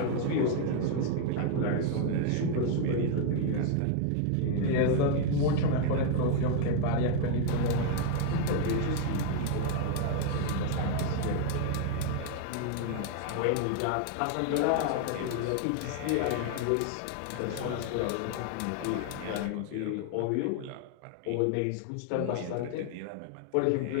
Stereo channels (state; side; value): different; both; correlation 0.00